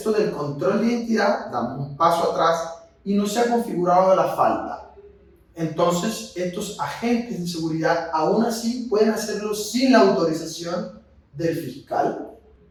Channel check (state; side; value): identical; both; correlation 1.00